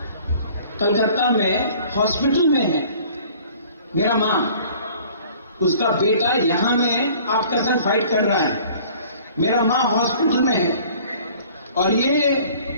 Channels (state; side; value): inverted; both; correlation -0.51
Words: कलकत्ता में हॉस्पिटल में है मेरा मां। उसका बेटा यहां में आपका संग फाइट कर रहा है, मेरा मां हॉस्पिटल में है। और ये